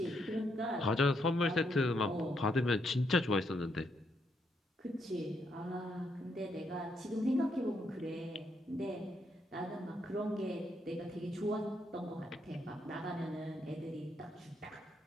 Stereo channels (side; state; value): both; normal; correlation 0.77